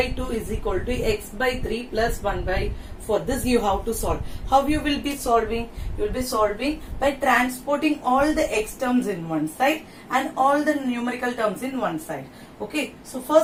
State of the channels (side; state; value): both; identical; correlation 1.00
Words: 2 is equal to x by 3 plus 1 by 4. This you have to solve. How you will be solving? You will be solving by transporting all the x terms in one side and all the numerical terms in one side. Okay. So